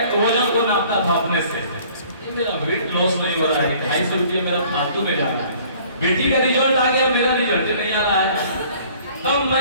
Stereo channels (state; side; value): inverted; both; correlation -0.54